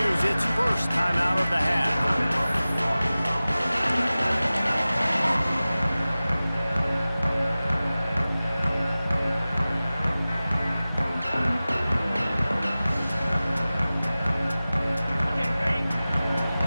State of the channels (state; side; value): inverted; both; correlation -0.97